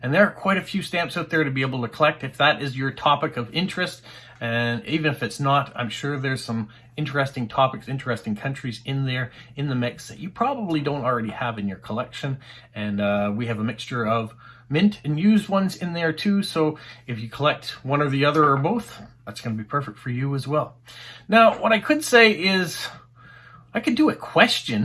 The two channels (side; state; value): both; identical; correlation 1.00